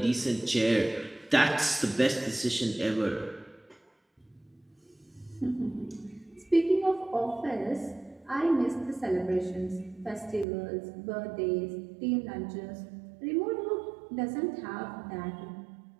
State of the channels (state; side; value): drops out; left; at 10.5 s